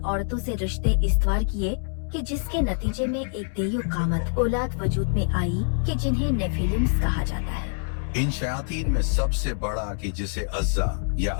से रिश्ते इस्तवार किए कि जिसके नतीजे में एक देयु कामत औलाद वजूद में आई कि जिन्हें नेफिलिम्स कहा जाता है। इन शयातीन में सबसे बड़ा कि जिसे अज़्ज़ा या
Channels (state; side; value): silent; right; 61 dB below the other